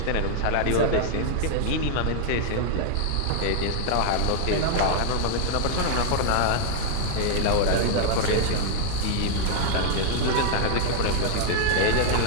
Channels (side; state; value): both; different; correlation 0.00